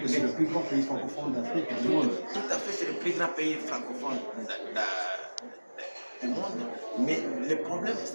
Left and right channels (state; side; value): inverted; both; correlation -1.00